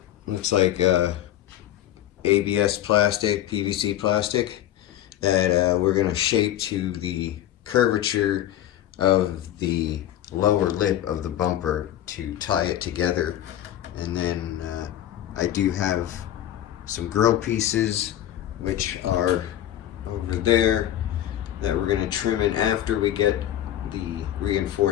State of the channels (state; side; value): quieter; right; 12.2 dB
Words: looks like ABS plastic, PVC plastic, that we're going to shape to the curvature of the lower lip of the bumper to tie it together. And then I do have some grill pieces, which are over there, that we're going to trim in after we get the